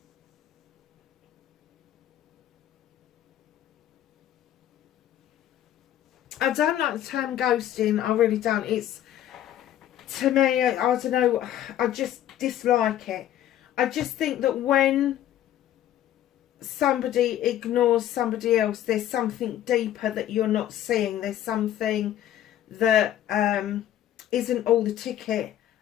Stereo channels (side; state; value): right; quieter; 11.9 dB